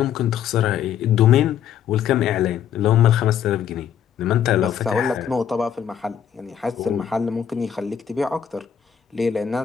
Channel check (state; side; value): quieter; right; 8.9 dB